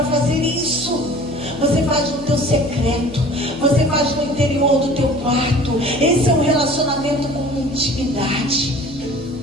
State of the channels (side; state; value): left; noise; hum, 19 dB below the sound